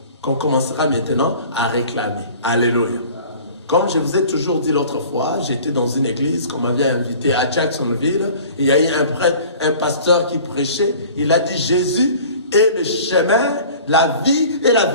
qu'on commencera maintenant à réclamer. Alléluia. Comme je vous ai toujours dit l'autre fois, j'étais dans une église qu'on m'avait invité à Jacksonville. Il y a eu un prêtre, un pasteur qui prêchait. Il a dit Jésus est le chemin, la vie et la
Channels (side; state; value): both; inverted; correlation -0.45